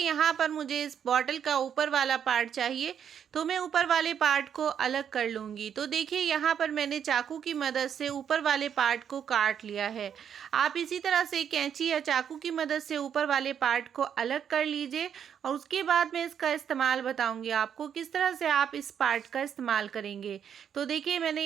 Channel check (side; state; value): left; quieter; 8.4 dB